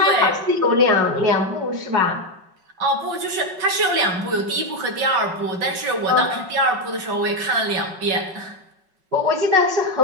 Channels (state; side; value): late; left; 5.3 ms